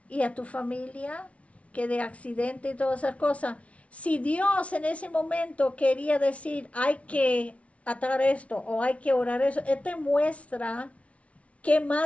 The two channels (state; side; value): late; right; 0.064 ms